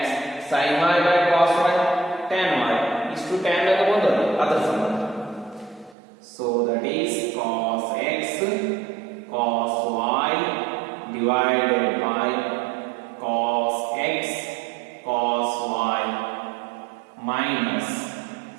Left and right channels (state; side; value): drops out; left; at 6.0 s